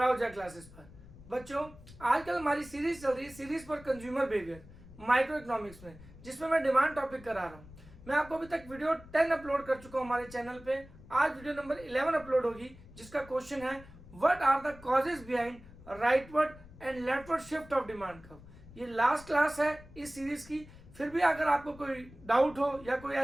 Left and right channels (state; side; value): noise; left; rumble, 19 dB below the sound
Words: क्लासेस पर। बच्चों, आजकल हमारी सीरीज चल रही है, सीरीज पर कंज्यूमर बिहेवियर माइक्रो इकोनॉमिक्स में, जिसमें मैं डिमांड टॉपिक करा रहा हूँ। मैं आपको अभी तक वीडियो 10 अपलोड कर चुका हूँ हमारे चैनल पे। आज वीडियो नंबर 11 अपलोड होगी, जिसका क्वेश्चन है what are the causes behind rightward and leftward shift of demand curve. ये लास्ट क्लास है इस सीरीज की। फिर भी अगर आपको कोई डाउट हो या कोई